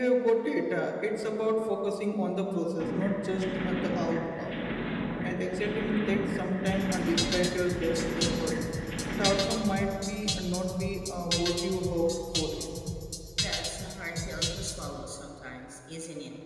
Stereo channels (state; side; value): identical; both; correlation 1.00